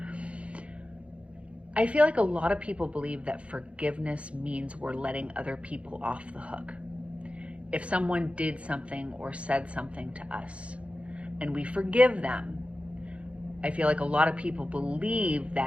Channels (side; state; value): left; late; 0.062 ms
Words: I feel like a lot of people believe that forgiveness means we're letting other people off the hook. If someone did something or said something to us and we forgive them, I feel like a lot of people believe